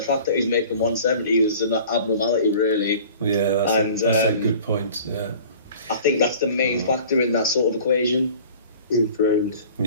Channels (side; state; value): both; inverted; correlation -0.45